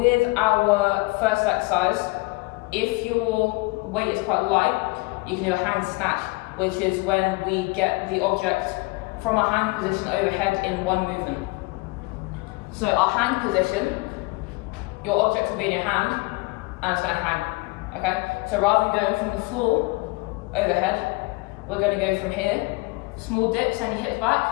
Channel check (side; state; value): right; quieter; 25.0 dB